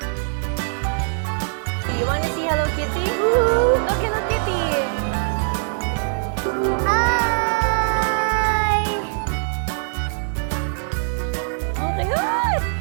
You wanna see Hello Kitty? Look, Hello Kitty. Hi! Oh my God!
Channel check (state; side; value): silent; left; 64 dB below the other